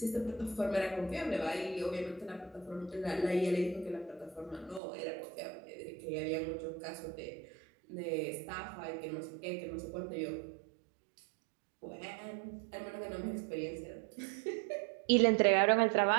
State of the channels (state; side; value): drops out; left; at 4.8 s